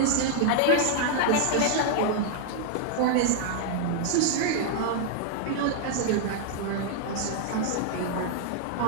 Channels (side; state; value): both; different; correlation 0.00